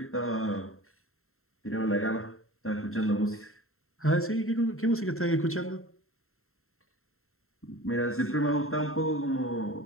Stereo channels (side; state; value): right; late; 0.62 ms